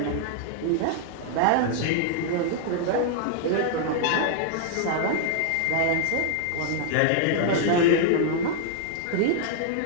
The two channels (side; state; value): both; different; correlation -0.01